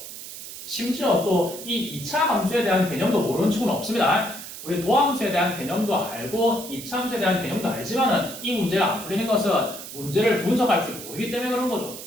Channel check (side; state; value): right; noise; hiss, 11 dB below the sound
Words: 심지어 또 이 2차 함수에 대한 개념도 모르는 친구는 없습니다. 우리 도함수에 대한 개념도 알고 2차 함수에 대한 개념도 알지만은 이 문제가 안 풀리는 것은 문제를 분석할 줄 모르기 때문에 그런 거죠.